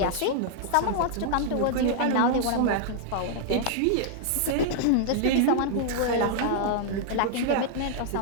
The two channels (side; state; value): both; different; correlation -0.01